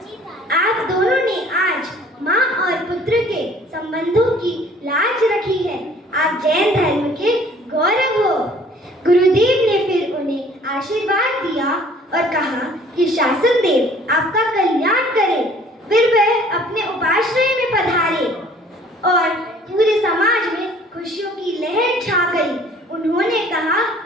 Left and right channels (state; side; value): normal; both; correlation 0.54